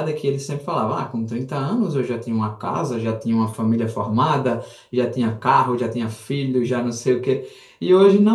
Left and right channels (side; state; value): both; identical; correlation 1.00